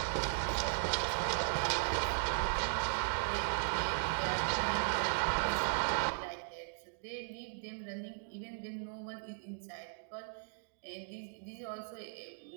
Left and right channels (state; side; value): silent; left; digital silence